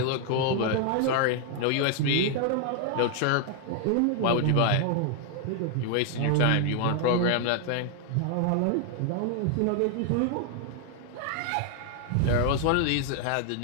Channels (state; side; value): different; both; correlation 0.00